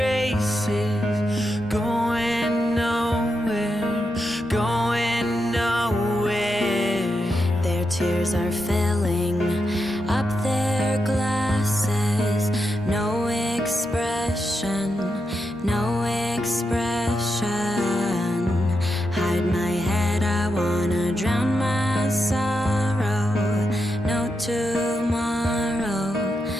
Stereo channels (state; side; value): normal; both; correlation 0.85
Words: going nowhere, going nowhere. Their tears are filling up their glasses. No expression, no expression. Hide my head, I wanna drown my sorrow. No tomorrow,